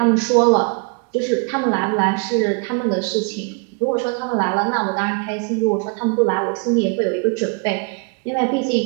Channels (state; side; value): quieter; left; 34.6 dB